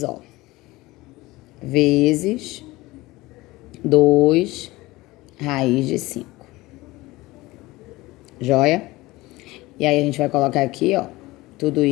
vezes 2 raiz de 5. Joia? E aí a gente vai colocar aqui, tudo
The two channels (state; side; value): quieter; right; 20.0 dB